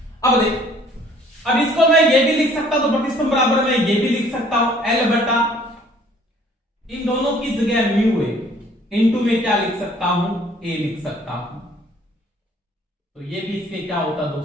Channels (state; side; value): normal; both; correlation 0.57